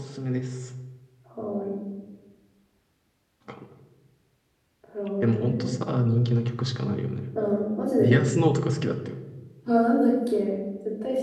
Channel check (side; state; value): both; identical; correlation 1.00